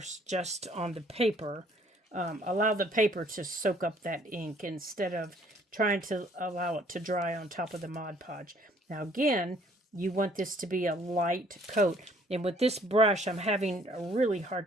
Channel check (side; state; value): both; normal; correlation 0.60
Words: just on the paper. Allow the paper to soak up that ink instead of trying to allow it to dry on top of the Mod Podge. Now, again, you want this to be a light coat. And with this brush, I'm having a really